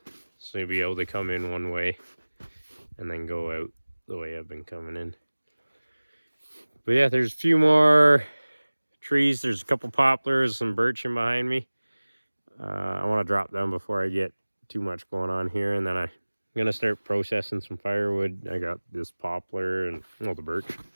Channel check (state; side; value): inverted; both; correlation -1.00